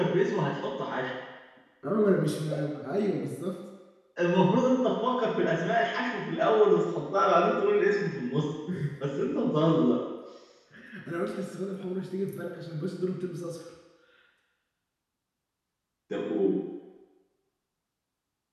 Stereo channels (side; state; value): both; identical; correlation 1.00